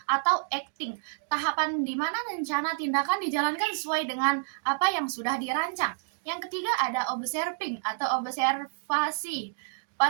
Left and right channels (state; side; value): silent; left; digital silence